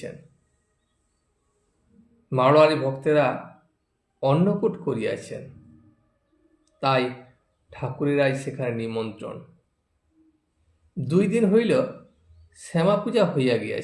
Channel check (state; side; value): identical; both; correlation 1.00